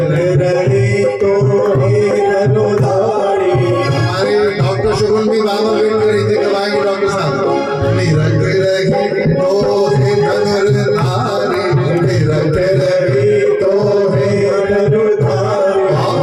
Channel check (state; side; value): identical; both; correlation 1.00